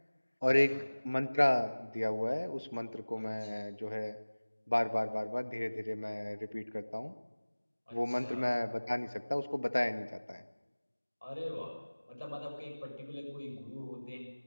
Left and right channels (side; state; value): both; inverted; correlation -1.00